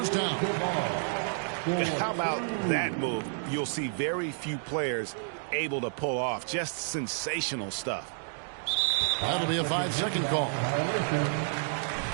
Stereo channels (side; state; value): left; silent; digital silence